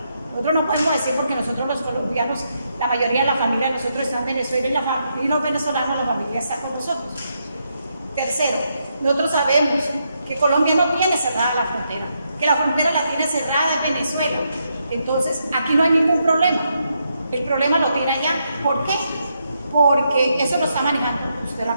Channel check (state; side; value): inverted; both; correlation -0.80